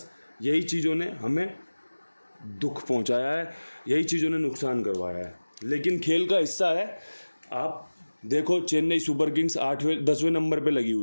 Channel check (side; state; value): both; inverted; correlation -1.00